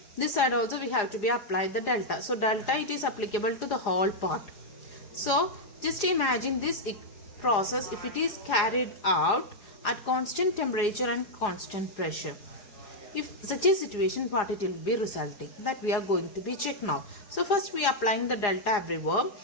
this side also we have to be applied the delta. So delta it is applicable to the whole part. So just imagine this process if it is carried out at constant temperature and constant pressure. If such a situation, what it will be resulting, that we are going to be check now. So first we are applying the delta everywhere.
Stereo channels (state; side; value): late; right; 4.9 ms